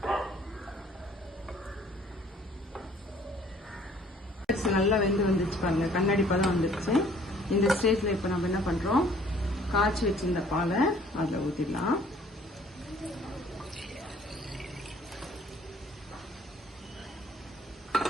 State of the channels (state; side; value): normal; both; correlation 0.56